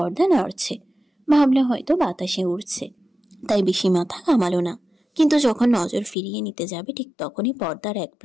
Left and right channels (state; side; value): drops out; right; at 6.2 s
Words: নড়ছে। ভাবলো হয়তো বাতাসে উড়ছে, তাই বেশি মাথা ঘামালো না। কিন্তু যখন নজর ফিরিয়ে নিতে যাবে ঠিক তখনই পর্দার এক